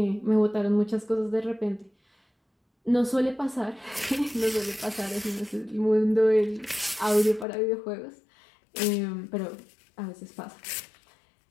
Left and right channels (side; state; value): right; drops out; at 7.5 s